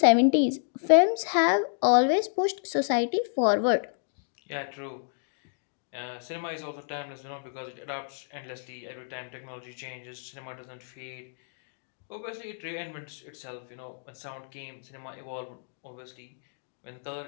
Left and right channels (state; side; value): silent; right; digital silence